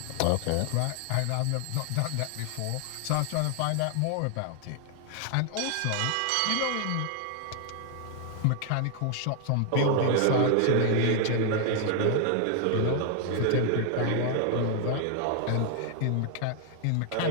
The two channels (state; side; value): different; both; correlation 0.00